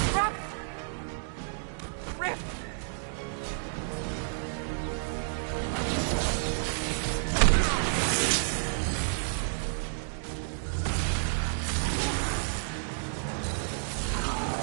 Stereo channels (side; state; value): left; silent; digital silence